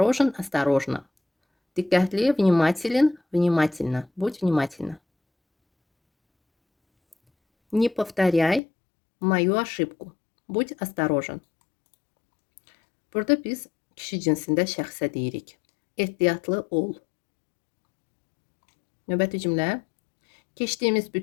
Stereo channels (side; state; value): right; drops out; at 8.6 s